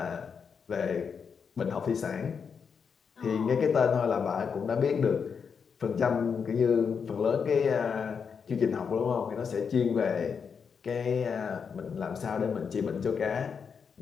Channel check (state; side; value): quieter; right; 6.3 dB